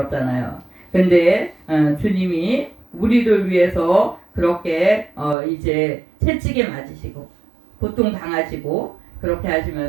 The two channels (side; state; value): left; drops out; at 5.4 s